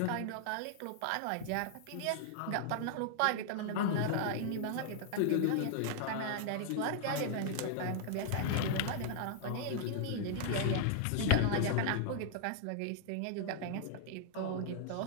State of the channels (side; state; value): both; different; correlation -0.01